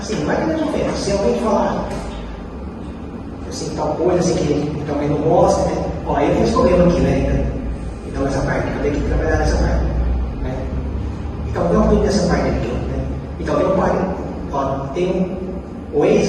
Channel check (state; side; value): identical; both; correlation 1.00